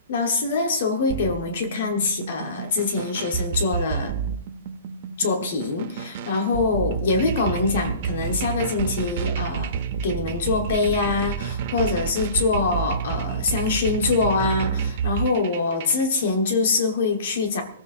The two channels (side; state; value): both; inverted; correlation -0.41